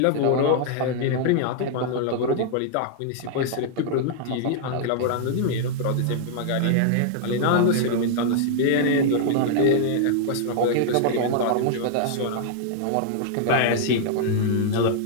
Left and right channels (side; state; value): both; different; correlation -0.01